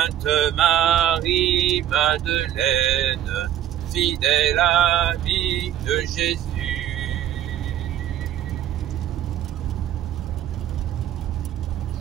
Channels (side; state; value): left; quieter; 11.4 dB